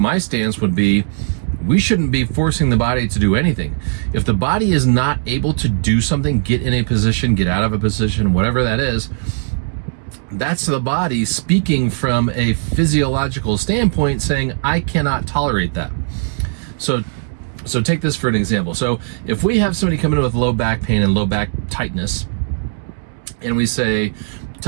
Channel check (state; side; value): silent; left; digital silence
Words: would be, we shouldn't be forcing the body to do anything. If the body is not able to do something, get in a position, get out of a position, whatever that is, that's the body speaking from a physiological standpoint saying, I cannot tolerate that. So take this for an example. So if we have somebody come in with low back pain and low back tightness, and we say,